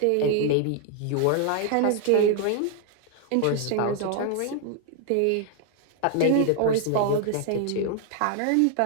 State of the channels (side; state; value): both; different; correlation 0.00